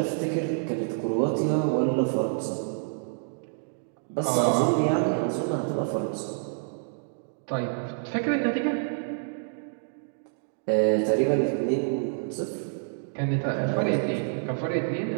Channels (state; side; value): silent; left; digital silence